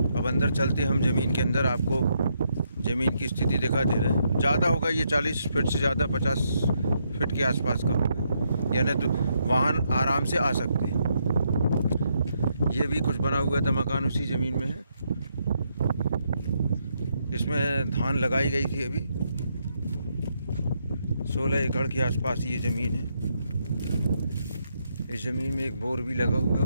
अंदर चलते हम ज़मीन के अंदर, आपको ज़मीन की स्थिति दिखा दे रहे हैं। ज़्यादा होगा ये 40 फीट से ज़्यादा, 50 फीट के आसपास का होगा, यानी तो वाहन आराम से आ सकते हैं। ये भी कुछ बना हुआ था मकान उसी ज़मीन में है। इसमें धान लगाई गई थी अभी। 16 एकड़ के आसपास ये ज़मीन है। इस ज़मीन में एक बोर भी लगा हुआ है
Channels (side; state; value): both; inverted; correlation -0.77